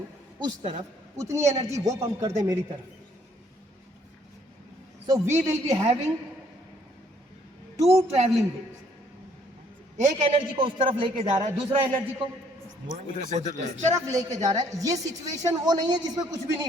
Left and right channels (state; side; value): normal; both; correlation 0.64